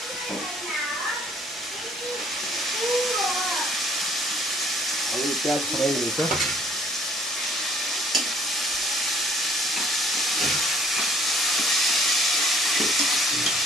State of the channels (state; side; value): normal; both; correlation 0.58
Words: अब यो प्याज फ्राई हुँदैछ।